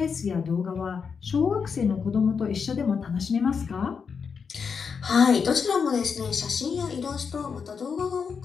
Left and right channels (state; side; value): quieter; right; 6.0 dB